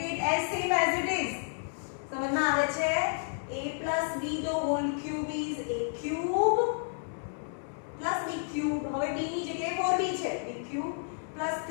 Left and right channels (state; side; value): silent; right; digital silence